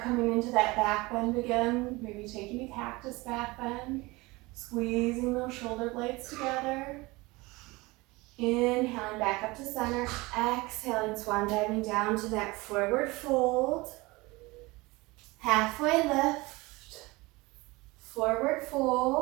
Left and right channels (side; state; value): left; quieter; 22.8 dB